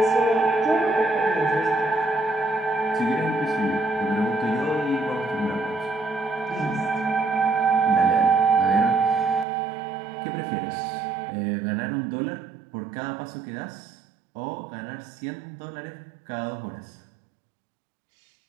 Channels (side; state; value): left; drops out; at 9.5 s